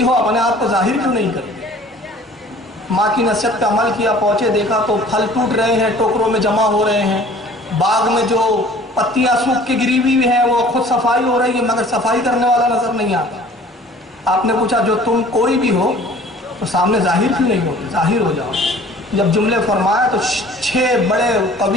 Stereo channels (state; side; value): normal; both; correlation 0.50